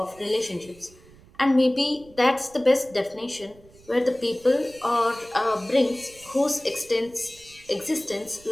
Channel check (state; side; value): noise; right; rumble, 25 dB below the sound